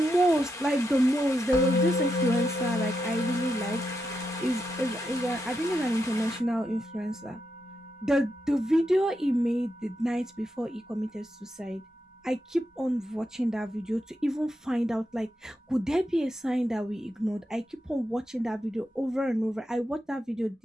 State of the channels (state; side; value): normal; both; correlation 0.85